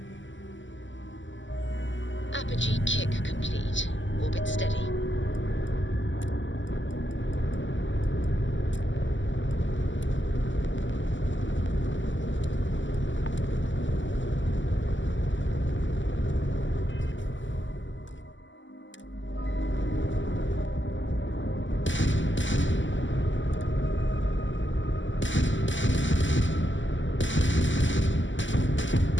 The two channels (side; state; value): right; late; 0.55 ms